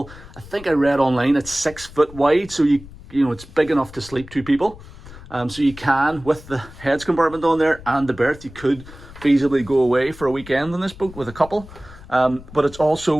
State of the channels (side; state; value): left; noise; rumble, 18 dB below the sound